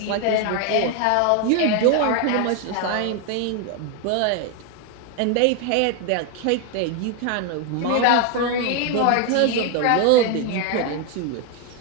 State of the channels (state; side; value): different; both; correlation 0.01